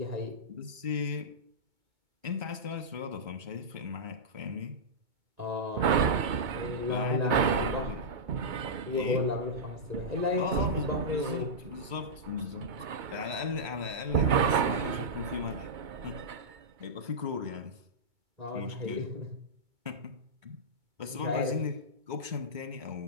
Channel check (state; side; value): late; left; 2.2 ms